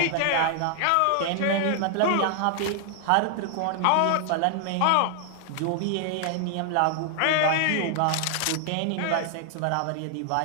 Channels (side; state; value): both; different; correlation 0.00